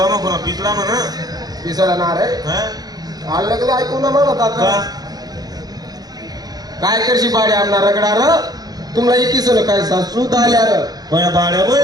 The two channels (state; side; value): late; left; 0.19 ms